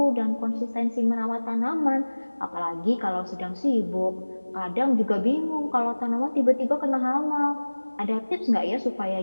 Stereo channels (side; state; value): both; inverted; correlation -1.00